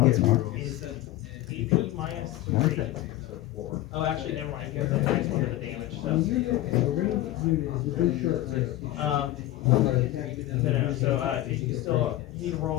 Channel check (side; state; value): right; quieter; 15.4 dB